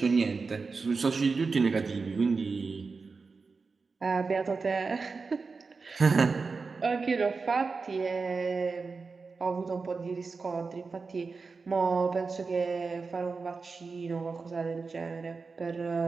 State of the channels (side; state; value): left; quieter; 4.5 dB